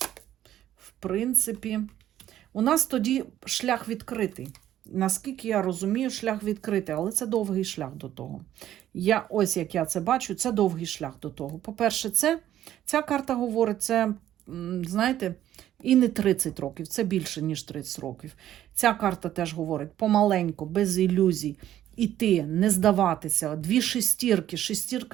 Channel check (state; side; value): quieter; left; 12.1 dB